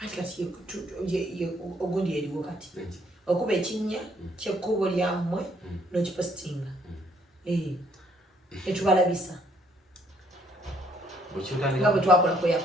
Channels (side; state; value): both; normal; correlation 0.66